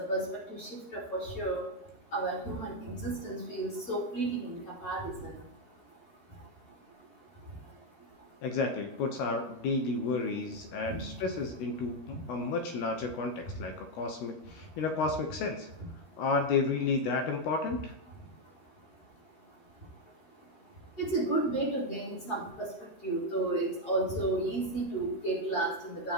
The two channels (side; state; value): right; late; 13 ms